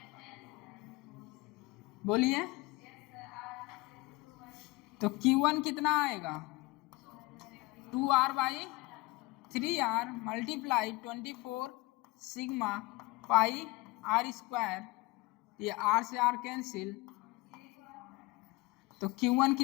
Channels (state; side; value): quieter; right; 22.4 dB